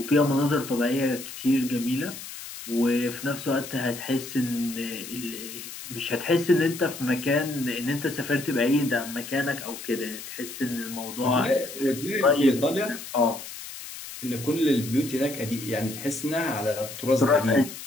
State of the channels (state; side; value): noise; left; hiss, 11 dB below the sound